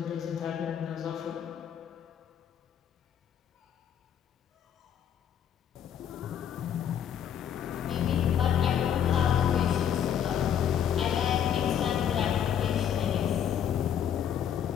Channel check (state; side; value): quieter; right; 9.1 dB